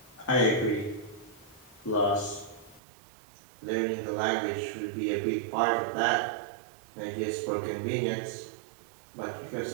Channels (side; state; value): left; drops out; at 2.8 s